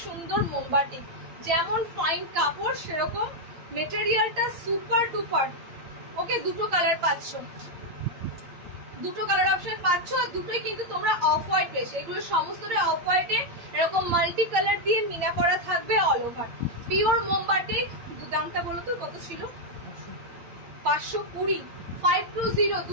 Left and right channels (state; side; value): late; left; 8.8 ms